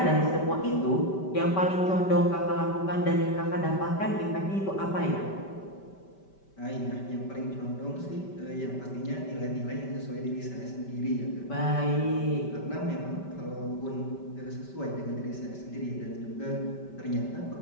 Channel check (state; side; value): late; right; 5.2 ms